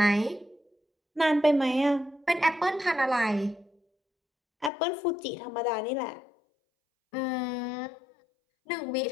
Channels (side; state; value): right; drops out; at 4.7 s